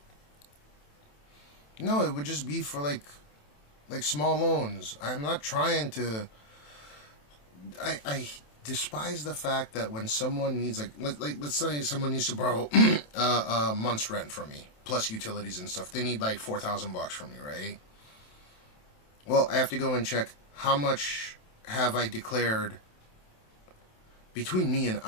No, it would just be for like small loans. I'm not trying to. I despise the fact that when someone needs like let's say someone needs to borrow a month's rent from me plus utilities and stuff. They need like $4,000 from me, right? Well, I have to go and check how much have I declared between me and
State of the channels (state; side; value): late; right; 27 ms